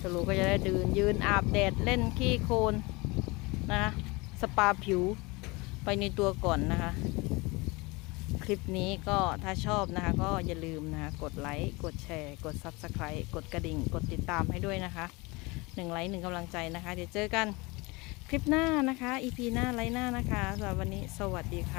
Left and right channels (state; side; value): quieter; right; 25.2 dB